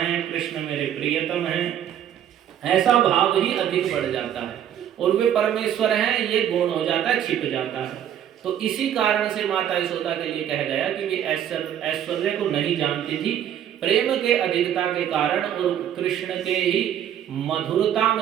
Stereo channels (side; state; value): left; quieter; 10.2 dB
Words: कृष्ण मेरे प्रियतम हैं, ऐसा भाव ही अधिक बढ़ जाता है, और वे परमेश्वर हैं ये गुण हो जाता है, छिप जाता है। तो इसी कारण से माता यशोदा के लिए कहा गया कि वे ऐश्वर्य को नहीं जानती थी, प्रेम के अधिकता के कारण और कृष्ण के ही मधुरता